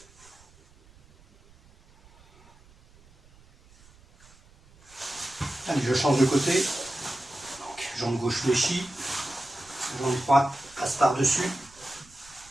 Allez, je change de côté. Donc, jambe gauche fléchie. Jambe droite passe par-dessus.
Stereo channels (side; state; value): right; noise; rumble, 27 dB below the sound